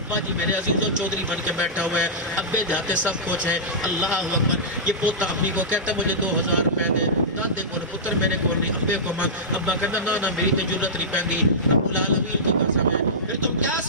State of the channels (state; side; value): normal; both; correlation -0.14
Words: جی میرے عزیزوں چودھری بن کے بیٹھا ہوا ہے، ابے جاتے سب کچھ ہے. اللہ اکبر. یہ پوتا اپنی کو کہتا ہے مجھے 2000 روپے دے، دادے کو پتر میرے کو نہیں، ابے کو مانگ. ابا کہتا نا میری تو ضرورت نہیں پیندی، رب العالمین کی قسم ہے. پھر تم کیا